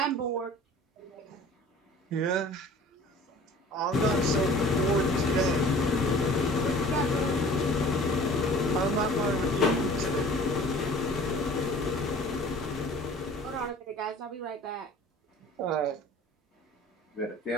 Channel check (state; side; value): normal; both; correlation 0.46